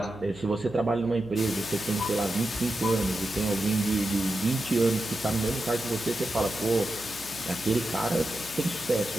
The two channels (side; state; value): right; noise; hum, 19 dB below the sound